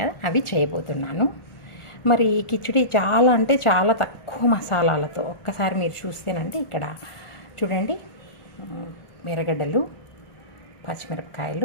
కదా, అవి చేయబోతున్నాను. మరి ఈ కిచిడి చాలా అంటే చాలా తక్కువ మసాలాలతో, ఒక్కసారి మీరు చూస్తేనంటే ఇక్కడ చూడండి, ఎర్రగడ్డలు,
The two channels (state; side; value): late; right; 1.4 ms